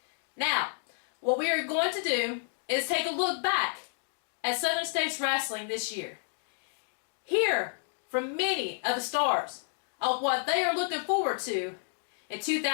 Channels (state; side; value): silent; right; digital silence